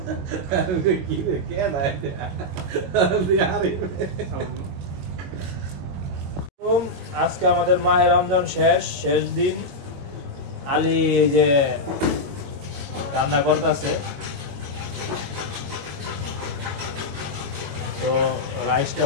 কি রে কে দায় আজকে আমাদের মাহে রমজান শেষ দিন আলী এই যে রান্না করতেছে তো রাইসটা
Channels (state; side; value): late; left; 22 ms